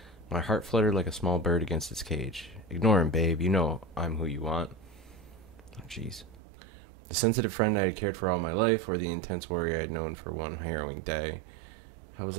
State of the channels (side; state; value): left; drops out; at 6.4 s